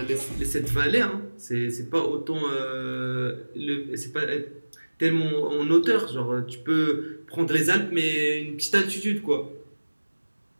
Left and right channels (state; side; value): inverted; both; correlation -1.00